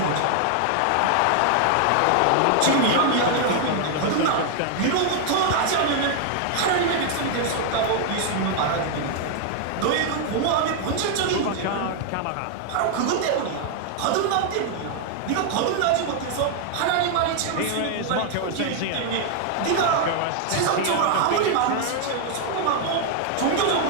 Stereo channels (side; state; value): both; different; correlation 0.00